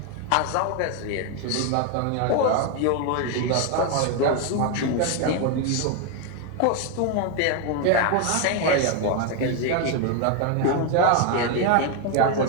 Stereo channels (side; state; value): both; different; correlation 0.02